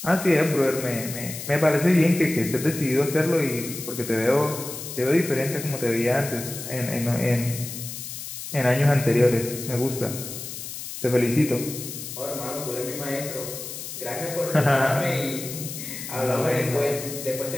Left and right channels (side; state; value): left; noise; hiss, 9 dB below the sound